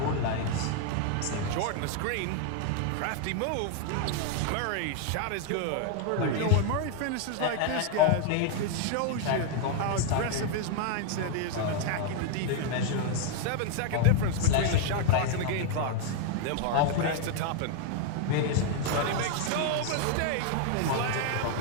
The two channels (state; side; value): different; both; correlation 0.00